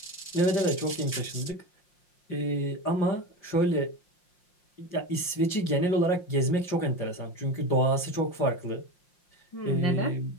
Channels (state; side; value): late; right; 5.6 ms